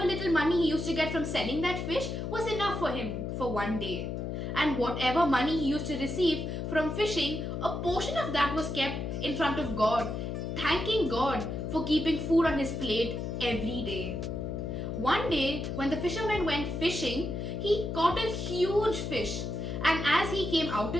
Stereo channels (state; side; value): noise; left; hum, 4 dB below the sound